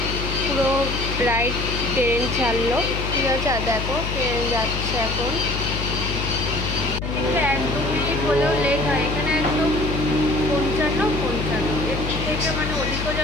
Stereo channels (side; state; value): left; noise; hum, 4 dB below the sound